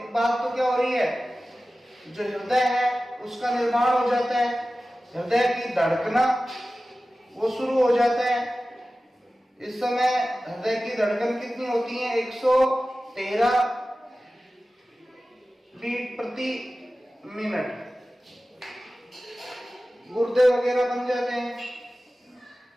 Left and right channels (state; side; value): normal; both; correlation 0.96